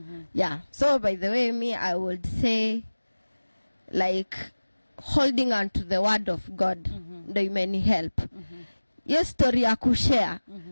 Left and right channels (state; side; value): inverted; both; correlation -1.00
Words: Yeah. So by the way, I would say like holding on to the word of God ndo imeni help. Yes, story ya kushare.